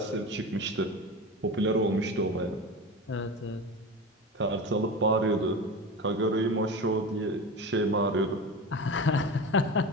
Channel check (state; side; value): normal; both; correlation 0.27